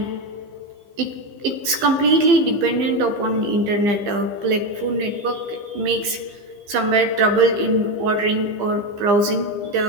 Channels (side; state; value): left; late; 15 ms